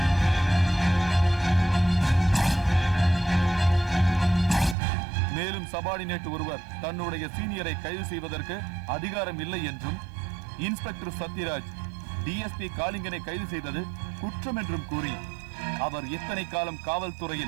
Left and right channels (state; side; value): drops out; left; at 4.8 s